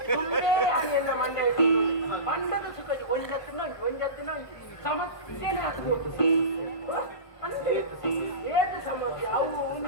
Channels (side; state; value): right; late; 1.2 ms